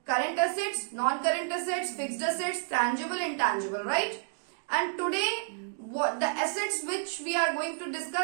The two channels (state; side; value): silent; left; digital silence